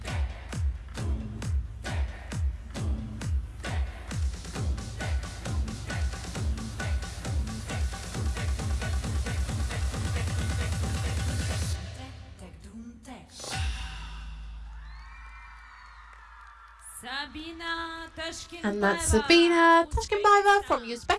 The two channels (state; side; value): identical; both; correlation 1.00